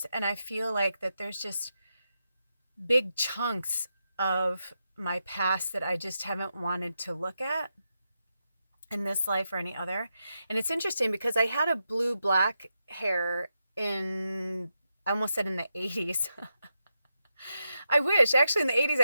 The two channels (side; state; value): both; inverted; correlation -0.86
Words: and I feel like that there's just big chunks of my past that I just haven't wanted to look at in this life or any other. And it's interesting because I had a blue-black hair in, I almost said in the 80s. I wish. Actually, in the 80s